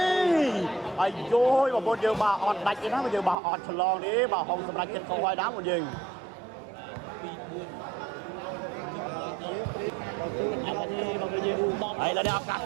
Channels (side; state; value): left; drops out; at 3.4 s